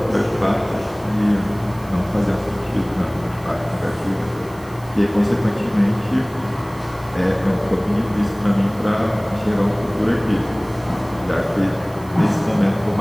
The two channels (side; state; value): right; noise; hiss, 24 dB below the sound